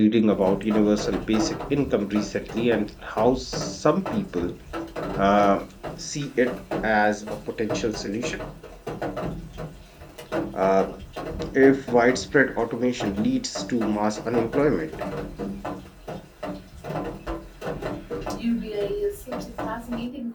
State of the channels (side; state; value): both; identical; correlation 1.00